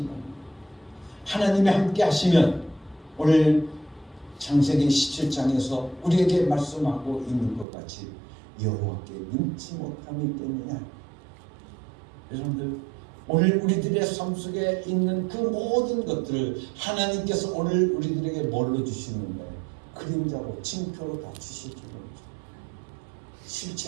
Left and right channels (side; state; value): left; drops out; at 7.7 s